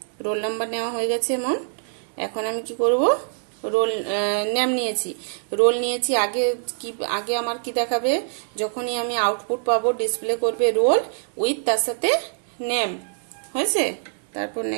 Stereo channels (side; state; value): left; silent; digital silence